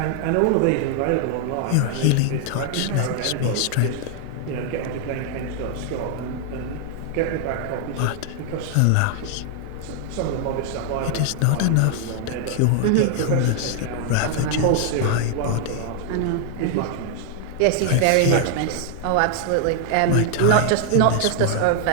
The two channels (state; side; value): different; both; correlation 0.00